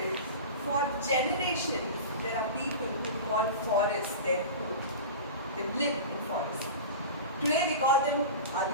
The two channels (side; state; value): both; inverted; correlation -0.30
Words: for generations, there are people who call forests their home. They live in forests. Today we call them